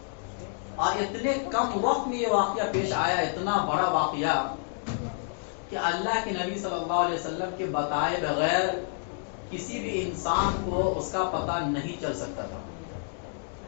اور اتنے کم وقت میں یہ واقعہ پیش آیا، اتنا بڑا واقعہ کہ اللہ کے نبی صلی اللہ علیہ وسلم کے بتائے بغیر کسی بھی انسان کو اس کا پتہ نہیں چل سکتا تھا.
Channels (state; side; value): silent; right; 59 dB below the other